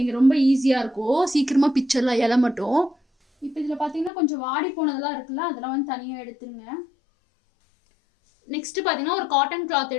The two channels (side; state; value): right; drops out; at 4.1 s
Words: ரொம்ப ஈஸியாக இருக்கும், சீக்கிரமாக பிச்சிடலாம் இலை மட்டும். இப்போ இதில் பார்த்தீங்கன்னா கொஞ்சம் வாடி போனதெல்லாம் இருக்குல்ல, அதெல்லாம் வந்து தனியாக எடுத்துருங்க. நெக்ஸ்ட்டு பார்த்தீங்கன்னா ஒரு காட்டன் கிளாத்